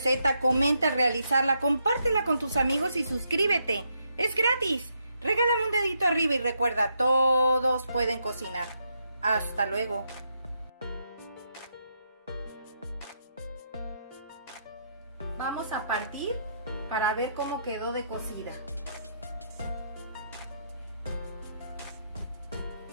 comenta realizarla, compártela con tus amigos y suscríbete. Es gratis. Regálame un dedito arriba y recuerda, todos pueden cocinar. Hasta luego. Vamos a partir para ver cómo quedó de cocida.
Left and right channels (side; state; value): both; inverted; correlation -0.78